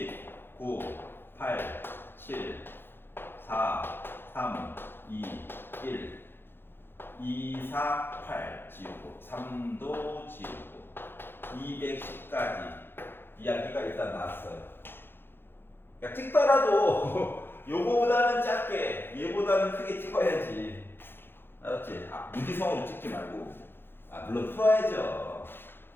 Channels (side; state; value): right; late; 0.10 ms